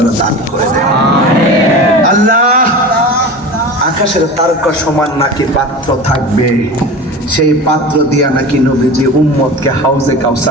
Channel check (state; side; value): normal; both; correlation 0.32